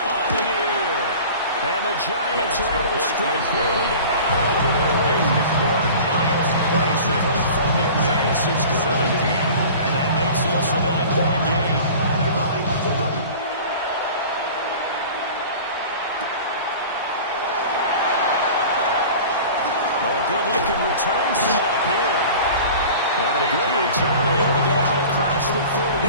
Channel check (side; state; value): both; inverted; correlation -0.40